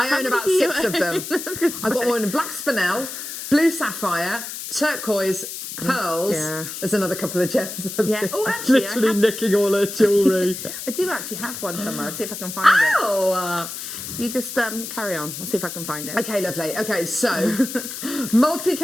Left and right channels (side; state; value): left; noise; hiss, 8 dB below the sound